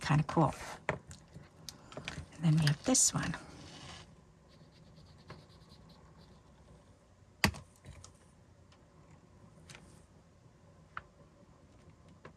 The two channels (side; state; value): both; identical; correlation 1.00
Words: of cool. And then we have this one.